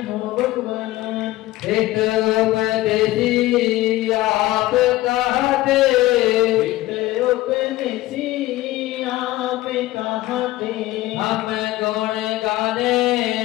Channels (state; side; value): quieter; right; 17.1 dB